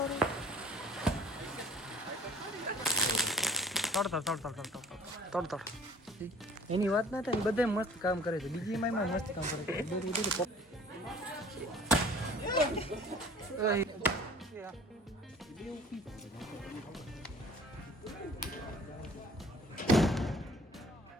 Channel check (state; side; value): normal; both; correlation 0.49